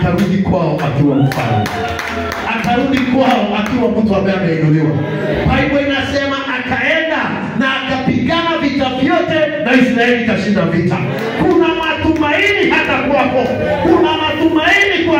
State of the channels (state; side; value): identical; both; correlation 1.00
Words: kwao akiwa mfalme, akarudi kwao akiwa mtu ambaye ameinuliwa. Biblia inasema akaenda na akapigana vita vyote na Israeli ikashinda vita. Kuna matumaini hata kwako, kuna matumaini kwa